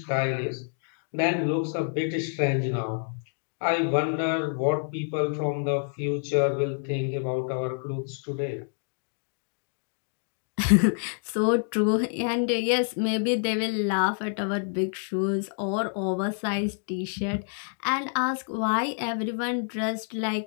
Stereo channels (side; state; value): right; silent; 60 dB below the other